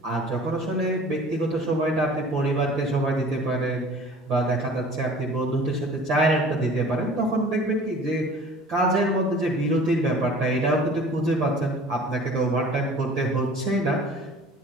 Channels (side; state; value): both; normal; correlation 0.46